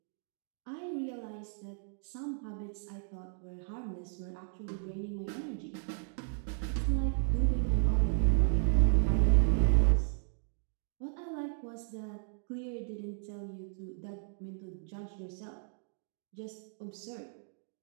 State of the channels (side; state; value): left; silent; digital silence